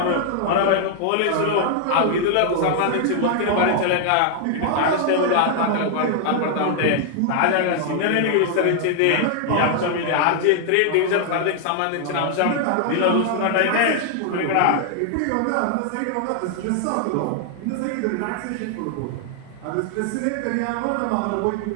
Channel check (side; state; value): both; different; correlation 0.00